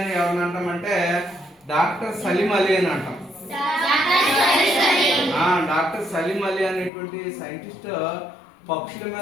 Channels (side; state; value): right; drops out; at 6.9 s